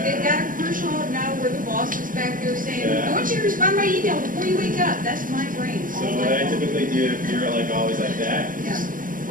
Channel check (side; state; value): left; late; 0.40 ms